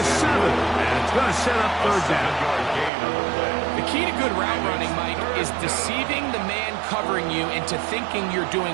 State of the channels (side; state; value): left; drops out; at 2.9 s